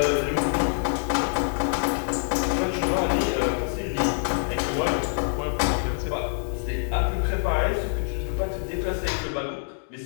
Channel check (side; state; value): right; silent; digital silence